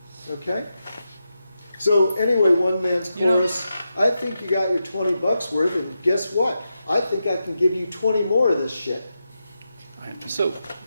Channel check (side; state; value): both; inverted; correlation -0.88